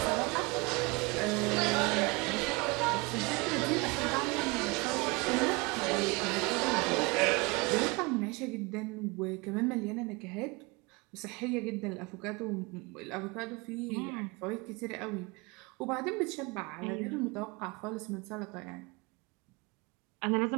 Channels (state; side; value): quieter; left; 26.7 dB